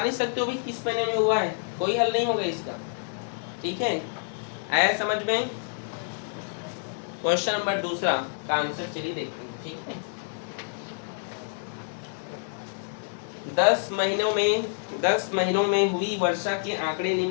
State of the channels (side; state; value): right; silent; 57 dB below the other